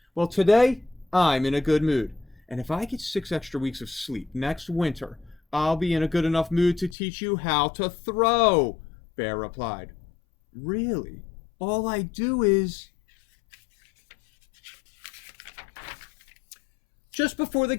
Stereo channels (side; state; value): right; drops out; at 7.0 s